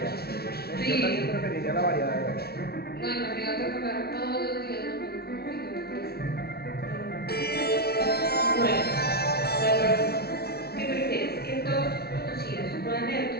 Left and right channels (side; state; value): right; late; 0.45 ms